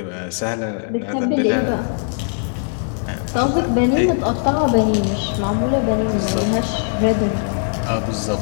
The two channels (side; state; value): right; silent; digital silence